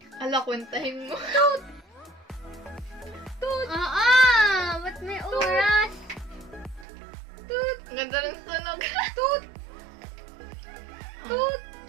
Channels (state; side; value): drops out; left; at 6.9 s